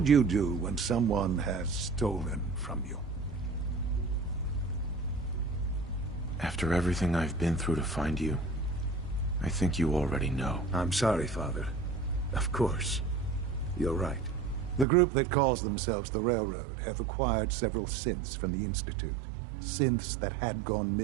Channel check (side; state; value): left; drops out; at 14.9 s